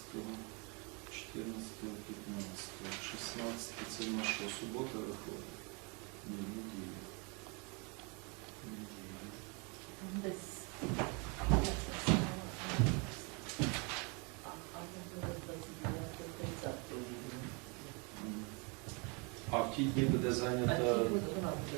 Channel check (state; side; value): quieter; left; 32.3 dB